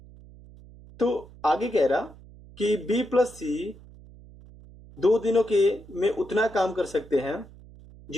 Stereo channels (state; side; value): noise; right; hum, 21 dB below the sound